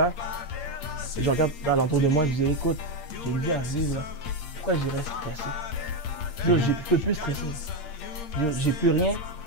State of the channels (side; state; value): right; late; 8.6 ms